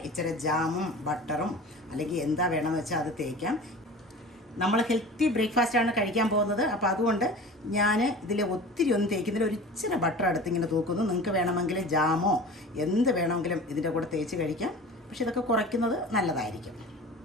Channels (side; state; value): both; normal; correlation 0.38